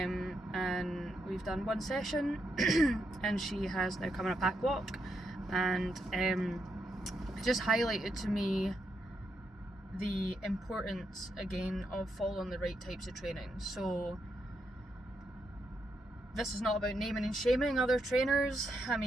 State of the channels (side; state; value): both; normal; correlation 0.81